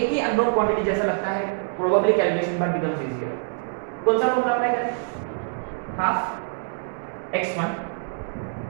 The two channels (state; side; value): silent; left; digital silence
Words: ही अननोन क्वांटिटी जैसा लगता है, प्रोबेबली कैलकुलेशन बार बिकम्स इजीियर। कौन सा फॉर्मूला अप्लाई करें, half x1